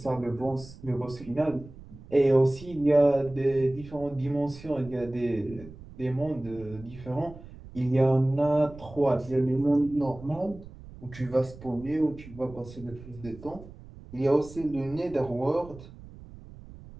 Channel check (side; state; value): right; noise; rumble, 17 dB below the sound